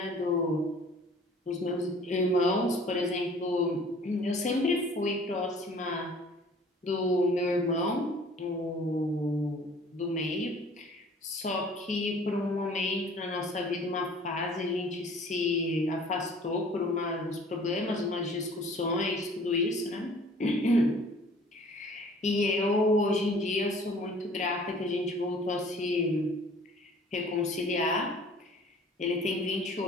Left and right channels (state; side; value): normal; both; correlation 0.51